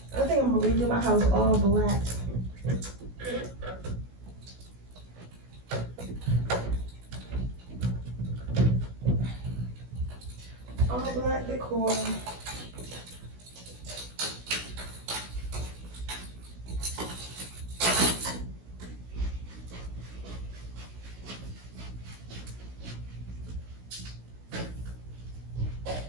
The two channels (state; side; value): late; left; 16 ms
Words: I think I'm gonna redo my house all black. All black decor.